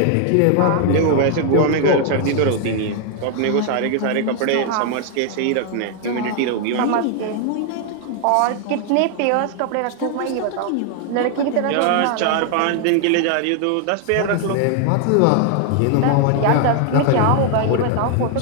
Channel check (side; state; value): both; different; correlation 0.00